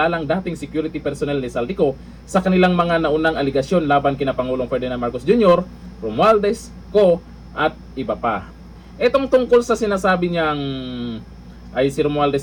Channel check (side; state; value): both; identical; correlation 1.00